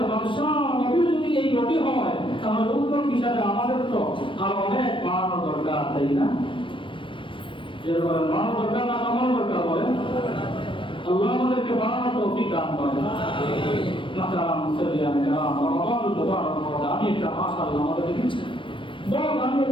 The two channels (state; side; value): late; right; 0.25 ms